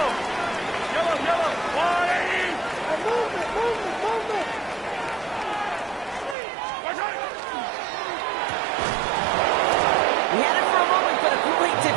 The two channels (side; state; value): left; drops out; at 6.4 s